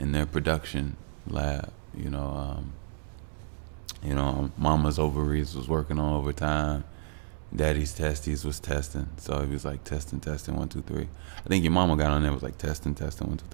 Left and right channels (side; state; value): left; silent; digital silence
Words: their production lab. Mama's ovaries was working on overtime. Daddy's testes was testing. So he was like testing, 1, 2, 3. I think your mama got on there, was like testing, 1, 2,